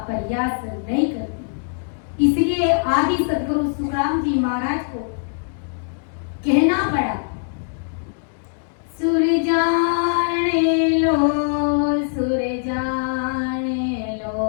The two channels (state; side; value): silent; right; digital silence